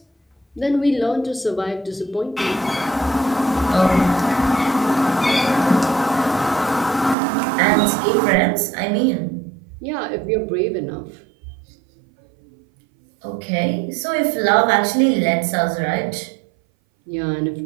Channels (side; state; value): left; drops out; at 7.2 s